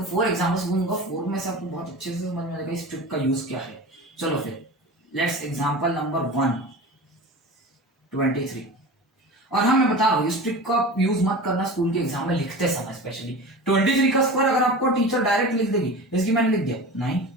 4 एग्जांपल्स दूंगा. 4 में से आपको बहुत अच्छे से समझ में आएगा इस ट्रिक का यूज क्या है. चलो फिर लेट्स एग्जांपल नंबर 1 23. और हाँ मैं बता रहा हूँ इस ट्रिक का यूज मत करना स्कूल के एग्जाम में लिखते समय. स्पेशली 23 का स्क्वायर अगर आपको टीचर डायरेक्ट लिख देगी, इसकी मैंने लिख दिया 9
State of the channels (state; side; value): normal; both; correlation 0.33